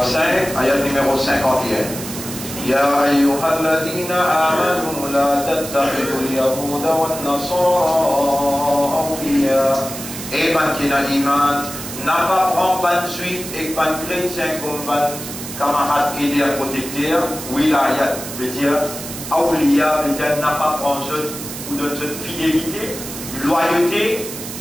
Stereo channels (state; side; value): noise; right; hiss, 10 dB below the sound